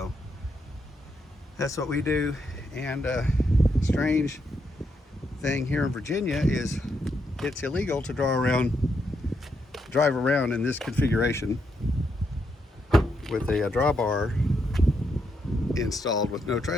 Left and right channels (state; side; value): normal; both; correlation 0.79